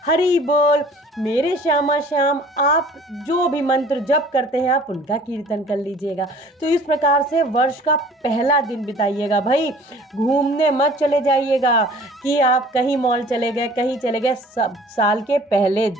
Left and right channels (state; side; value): normal; both; correlation 0.49